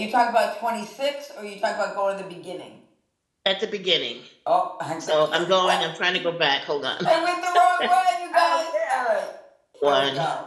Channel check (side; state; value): both; identical; correlation 1.00